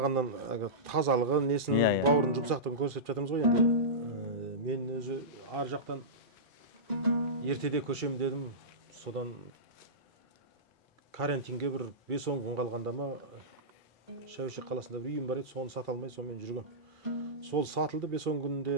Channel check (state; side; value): normal; both; correlation -0.17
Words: тазалығы, несін, бауырын жұмсақтығын көрсетіп жатырмыз ғой енді. Мен өзі ар жақтан ертеде көшем дедім. Содан карантинге бір 5-10 күн қалғанда ма, Шәуешек қаласында бір үйім бар еді, соны сата алмай, сонымен жүргем. сол сатылды 5-10